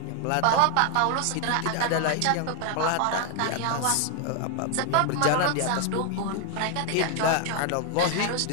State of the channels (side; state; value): both; different; correlation 0.00